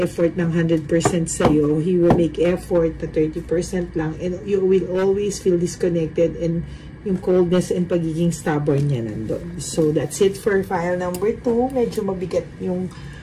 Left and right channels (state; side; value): identical; both; correlation 1.00